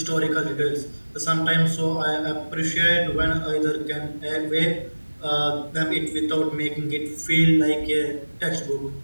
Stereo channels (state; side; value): inverted; both; correlation -1.00